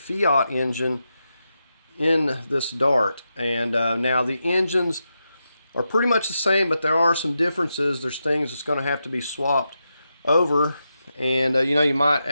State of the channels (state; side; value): inverted; both; correlation -0.87